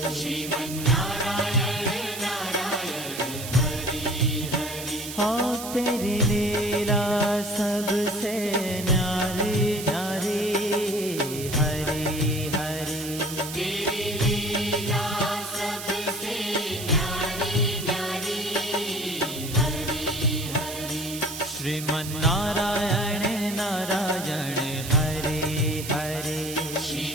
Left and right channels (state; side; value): noise; right; hiss, 9 dB below the sound